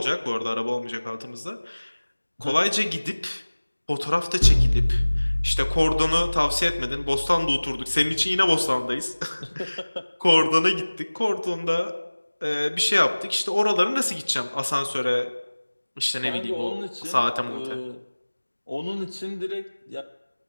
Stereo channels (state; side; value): inverted; both; correlation -1.00